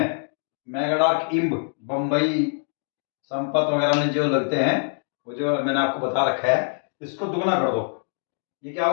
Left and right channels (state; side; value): silent; right; 56 dB below the other